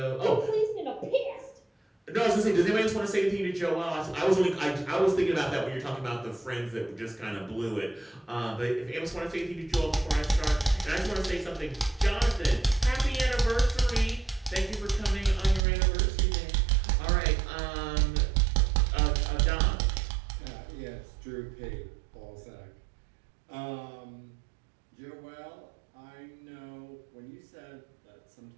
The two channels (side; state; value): left; drops out; at 15.6 s